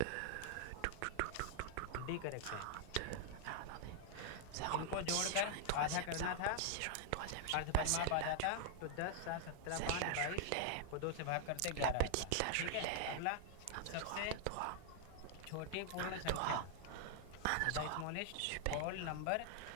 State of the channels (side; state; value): both; different; correlation 0.00